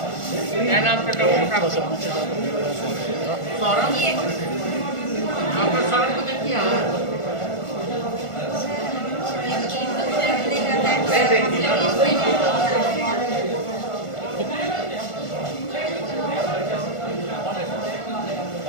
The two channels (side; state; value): right; late; 1.5 ms